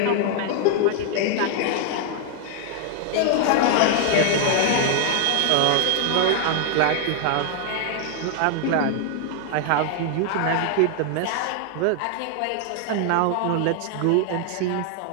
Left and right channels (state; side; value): different; both; correlation 0.00